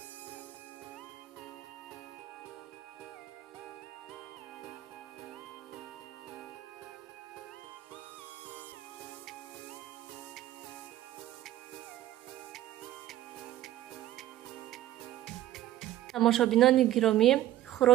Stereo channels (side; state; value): left; quieter; 13.8 dB